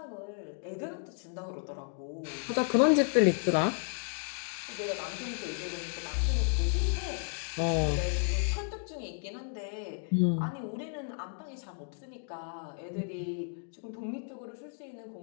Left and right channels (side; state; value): right; silent; 56 dB below the other